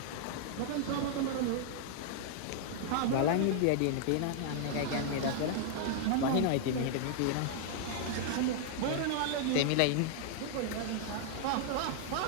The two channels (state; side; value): different; both; correlation -0.01